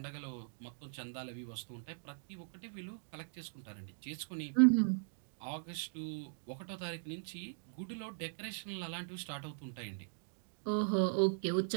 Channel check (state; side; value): silent; left; digital silence